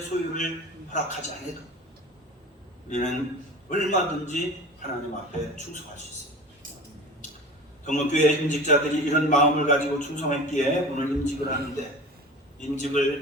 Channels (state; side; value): normal; both; correlation 0.36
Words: 소유를 허락하지 않아도 우리는 얼마든지 하나님 앞에 충성할 수 있습니다. 동목교회 임직자들이 이런 마음을 가지고 충성했기에 오늘 임직을 하는데,